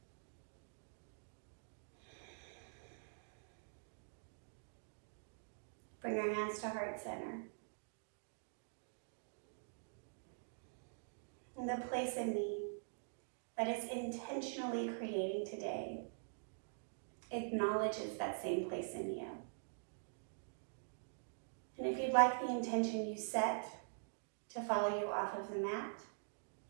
Bring your hands to heart center. And the place in me that is intentionally creating today acknowledges that same place in you. And if you'd like the intention you set to follow you off of the mat,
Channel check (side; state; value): left; silent; digital silence